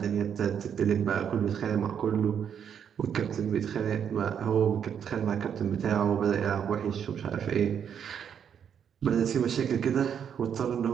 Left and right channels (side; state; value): left; quieter; 8.2 dB